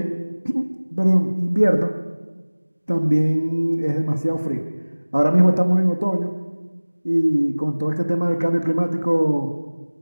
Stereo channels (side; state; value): both; inverted; correlation -1.00